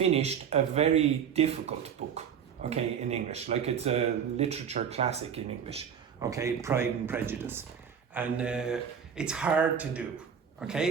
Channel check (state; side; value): quieter; left; 7.7 dB